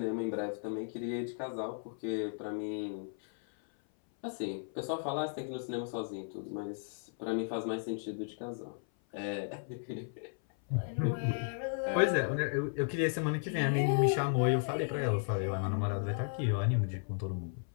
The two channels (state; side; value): silent; right; 55 dB below the other